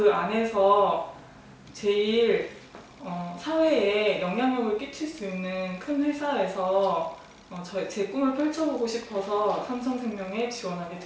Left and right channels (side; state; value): both; identical; correlation 1.00